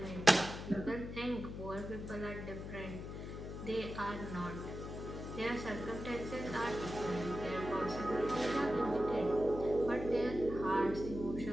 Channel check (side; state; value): left; noise; hum, 8 dB below the sound